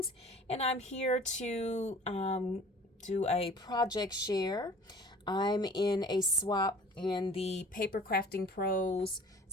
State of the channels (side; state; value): both; normal; correlation 0.48